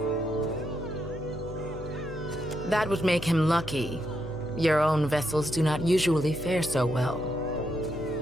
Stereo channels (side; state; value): right; noise; hum, 12 dB below the sound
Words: That would make him lucky. Your own vessels do not usually fare so well.